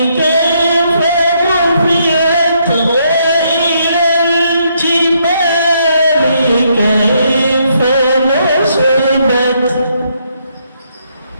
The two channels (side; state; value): both; inverted; correlation -0.74